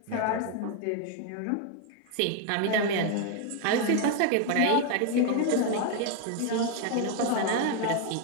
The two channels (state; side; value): different; both; correlation 0.01